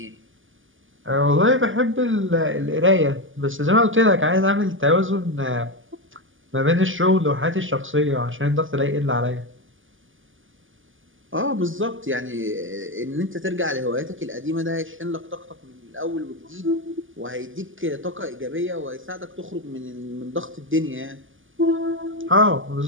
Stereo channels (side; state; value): left; late; 0.58 ms